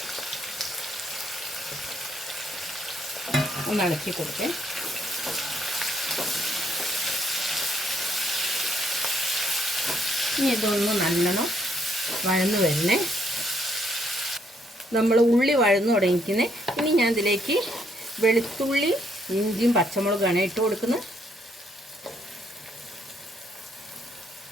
ഒന്ന് ഇളക്കി കൊടുക്കേ. ഇനി ഇതൊന്ന് നല്ലോണം വഴന്ന് വരണേ. നമ്മൾ ഉള്ളി വഴന്നു തുടങ്ങിക്കുന്നത്. ഇനി ഞാൻ ഇതിലേക്ക് വെളുത്തുള്ളി ഇഞ്ചിയും പച്ചമുളകാണ് ഇട്ട് കൊടുക്കുന്നത്.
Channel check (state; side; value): normal; both; correlation 0.71